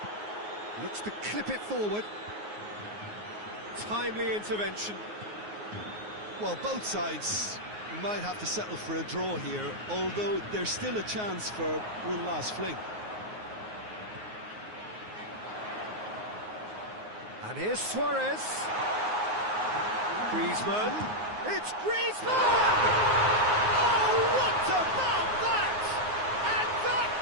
Looks to clip it forward. Timely intervention. Well, both sides might have to settle for a draw here, although there's still a chance for one last fling. And here's Suarez. Griezmann. It's Griezmann! Oh, what about that? And that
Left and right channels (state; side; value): late; left; 9.5 ms